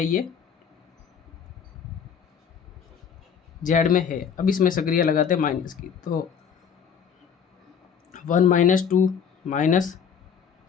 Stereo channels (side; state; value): right; quieter; 7.4 dB